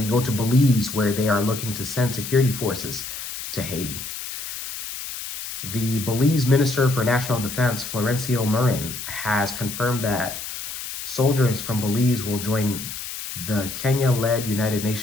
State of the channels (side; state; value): left; noise; hiss, 8 dB below the sound